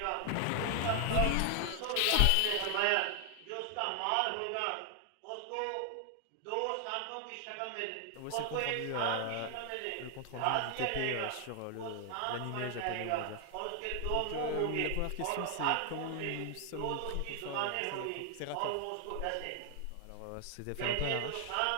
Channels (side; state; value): both; different; correlation 0.00